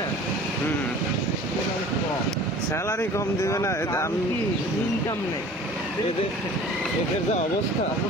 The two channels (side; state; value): both; normal; correlation 0.45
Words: একেবারে কম স্যালারি কম দিবে না আমি ইনকাম নেই এদের যা অবস্থা